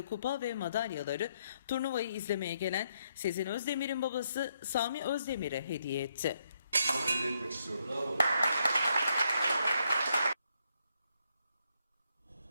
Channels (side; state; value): both; inverted; correlation -0.76